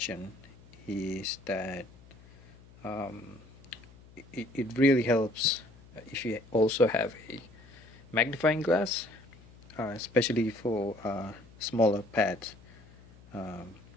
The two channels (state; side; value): noise; left; hum, 23 dB below the sound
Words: is that it really helps if you also have a magnifying glass, especially for smaller pads. So